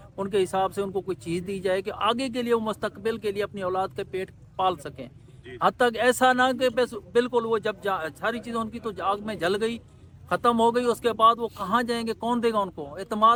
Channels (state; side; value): identical; both; correlation 1.00